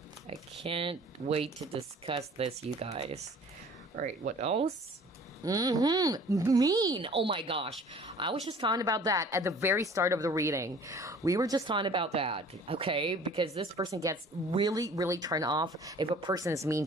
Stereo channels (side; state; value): both; normal; correlation 0.49